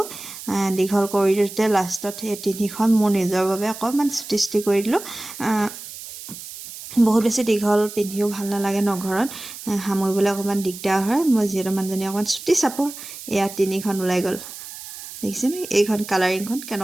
দীঘল কৰি দিওঁতে লাষ্টত সেই 3খন মোৰ নিজৰ বাবে অকণমান চুটি কৰি দিলোঁ বহুত বেছি দীঘল পিন্ধিও ভাল নালাগে ন ঘৰত সামৰিবলৈ অকণমান দিগদাৰ হয় মই যিহেতু মানুহজনী অকণমান চুটি চাপৰ 3খন ওলাই গ'ল দেখিছেনে এইখন কালাৰিংখন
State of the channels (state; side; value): noise; right; hiss, 13 dB below the sound